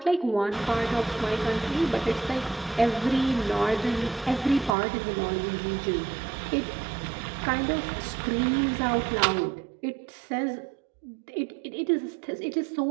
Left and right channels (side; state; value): left; drops out; at 4.8 s